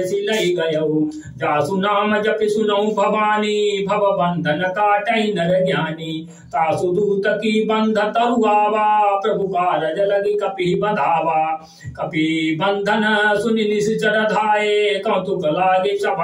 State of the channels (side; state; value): both; identical; correlation 1.00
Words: सिलई गयउ जासु नाम जपि सुनऊ भवानी भव बंधन काटई नर ज्ञानी तासु दूत की बंध तरुआवा प्रभु कारज लगी कपि बधावा कपि बंधन सुनि निश्चर धाये कौतुक लागे